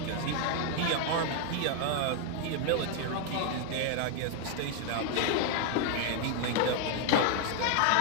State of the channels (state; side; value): different; both; correlation 0.00